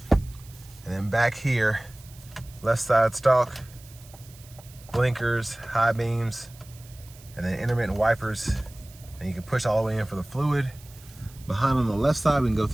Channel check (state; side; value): noise; right; hiss, 23 dB below the sound